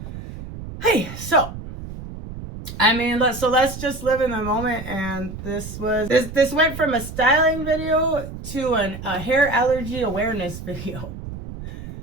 Hey, so I mean, let's just live in the moment. And this went from a styling video to a hair allergy awareness video.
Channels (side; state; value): right; noise; rumble, 11 dB below the sound